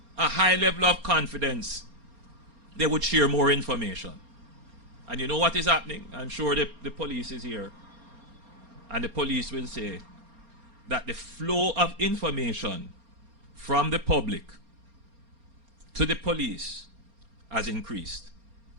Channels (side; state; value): left; late; 4.3 ms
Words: a high level of confidence, they would share more information. And you know what is happening? I'm sure the police is here. And the police will say that the flow of information from the public to the police has increased.